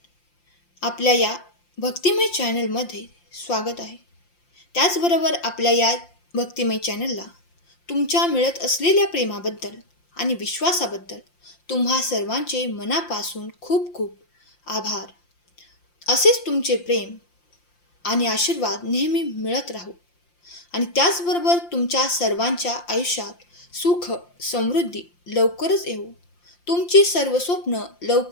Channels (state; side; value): late; right; 5.7 ms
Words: आपल्या या भक्तिमय चॅनलमध्ये स्वागत आहे. त्याचबरोबर आपल्या या भक्तिमय चॅनलला तुमच्या मिळत असलेल्या प्रेमाबद्दल आणि विश्वासाबद्दल तुम्हा सर्वांचे मनापासून खूप खूप आभार. असेच तुमचे प्रेम आणि आशीर्वाद नेहमी मिळत राहू आणि त्याचबरोबर तुमच्या सर्वांच्या आयुष्यात सुख समृद्धी लवकरच येऊ, तुमची सर्व स्वप्न